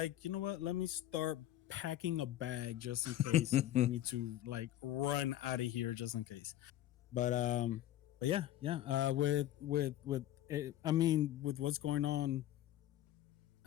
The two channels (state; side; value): quieter; right; 13.3 dB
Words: you know what? Let me start packing a bag just in case we need to like run out of here just in case. But yeah. With what's going on,